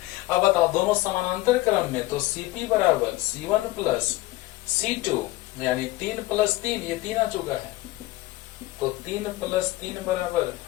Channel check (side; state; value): right; quieter; 18.5 dB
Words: बताओ, दोनों समानांतर क्रम में, तो CP बराबर C1 प्लस C2, यानी 3 प्लस 3, ये 3 आ चुका है, तो 3 प्लस 3 बराबर